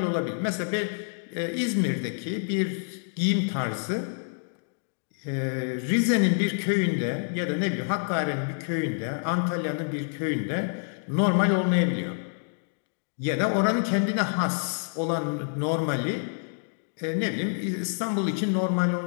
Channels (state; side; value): silent; right; digital silence